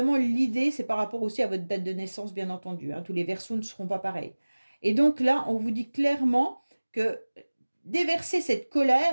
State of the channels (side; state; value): both; inverted; correlation -1.00